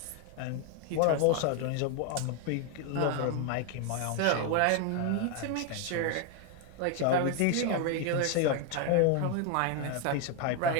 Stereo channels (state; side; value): different; both; correlation 0.01